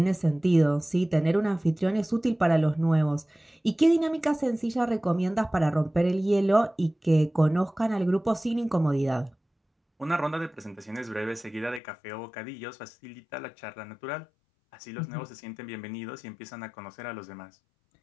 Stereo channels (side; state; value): right; drops out; at 11.8 s